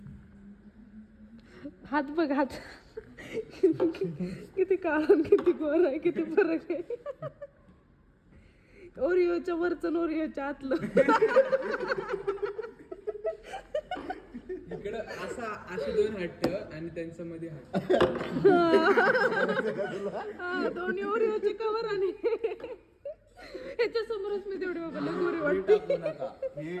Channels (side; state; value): both; identical; correlation 1.00